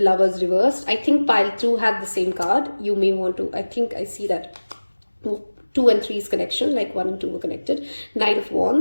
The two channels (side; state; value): both; inverted; correlation -1.00